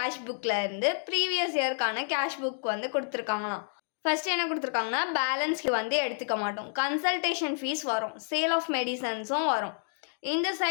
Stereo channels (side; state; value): right; silent; digital silence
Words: புக்கில் இருந்து ப்ரீவியஸ் இயர்க்கான கேஷ் புக் வந்து கொடுத்துருக்காங்களாம். ஃபர்ஸ்ட் என்ன கொடுத்துருக்காங்கன்னா, பேலன்ஸ்க்கு வந்து எடுத்துக்க மாட்டோம், கன்சல்டேஷன் ஃபீஸ் வரும், சேல் ஆஃப் மெடிசன்ஸும் வரும், இந்த